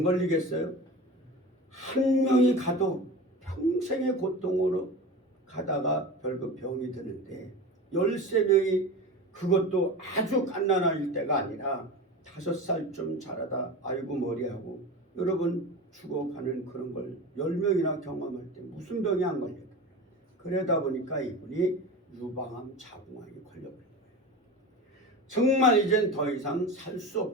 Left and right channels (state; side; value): normal; both; correlation 0.30